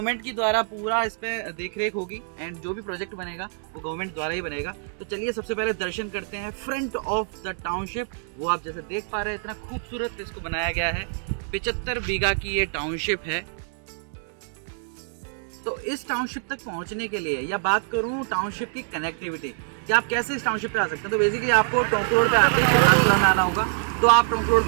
की द्वारा पूरा इस पे देख रेख होगी एंड जो भी प्रोजेक्ट बनेगा वो गवर्नमेंट द्वारा ही बनेगा। तो चलिए सबसे पहले दर्शन करते हैं फ्रंट ऑफ द टाउनशिप। वो आप जैसे देख पा रहे हैं, इतना खूबसूरत इसको बनाया गया है। 75 बीघा की ये टाउनशिप है। तो इस टाउनशिप तक पहुंचने के लिए या बात करूं टाउनशिप की कनेक्टिविटी कि आप कैसे इस टाउनशिप पे आ सकते हैं, तो बेसिकली आपको टोंक रोड पे आते ही शिवदासपुरा में आना होगा। तो आप टोंक रोड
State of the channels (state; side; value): silent; left; digital silence